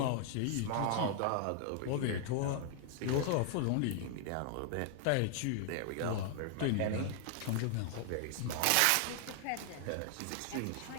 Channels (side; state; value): both; different; correlation 0.00